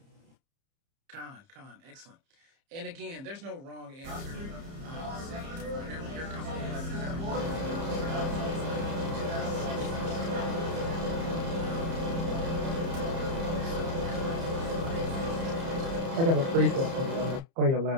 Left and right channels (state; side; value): late; left; 30 ms